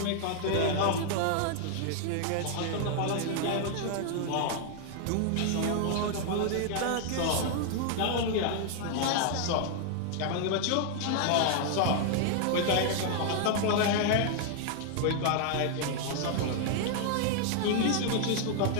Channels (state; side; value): different; both; correlation 0.00